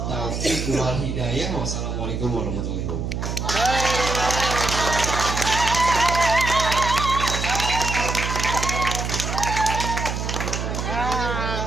wal hidayah. Wassalamualaikum warahmatullahi wabarakatuh.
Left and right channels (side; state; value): right; noise; hum, 3 dB below the sound